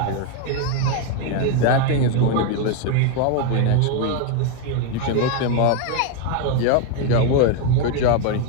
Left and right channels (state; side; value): different; both; correlation 0.01